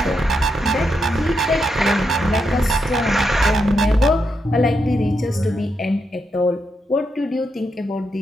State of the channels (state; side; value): normal; both; correlation 0.82